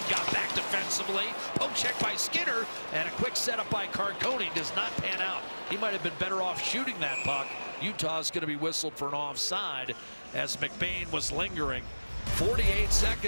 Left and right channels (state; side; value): inverted; both; correlation -1.00